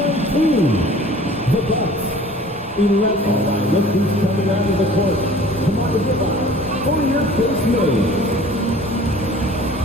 The Bucks, 11. Look who's coming out of the court. Come on, goodbye. For your first move.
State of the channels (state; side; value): normal; both; correlation 0.47